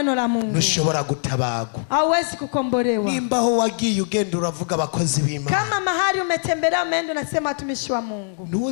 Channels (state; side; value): silent; right; digital silence